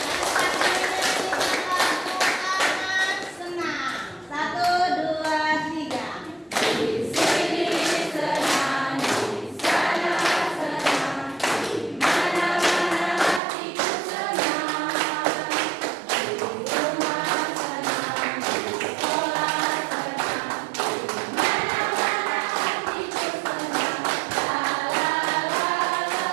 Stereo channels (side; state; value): left; drops out; at 13.4 s